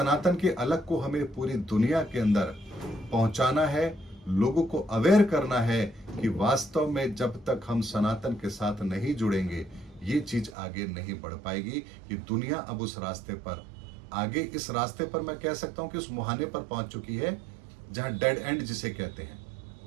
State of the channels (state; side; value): drops out; left; at 10.6 s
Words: के अलग को हमें पूरी दुनिया के अंदर पहुंचाना है, लोगों को अवेयर करना है कि वास्तव में जब तक हम सनातन के साथ नहीं जुड़ेंगे ये चीज आगे नहीं बढ़ पाएगी। कि दुनिया अब उस रास्ते पर आगे, इस रास्ते पर मैं कह सकता हूं कि उस मुहाने पर पहुंच चुकी है जहां डेड एंड जिसे कहते हैं।